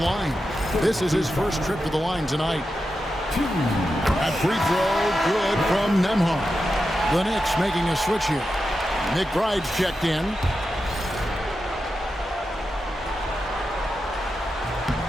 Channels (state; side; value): normal; both; correlation 0.89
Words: This is his first trip to the line tonight. That free throw, good from Nembhard. The Knicks making a switch here. McBride's checked in.